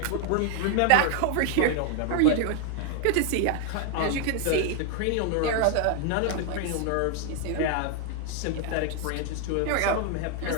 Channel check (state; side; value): different; both; correlation 0.00